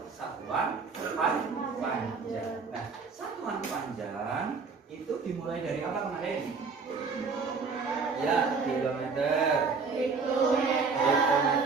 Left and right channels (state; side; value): quieter; left; 4.8 dB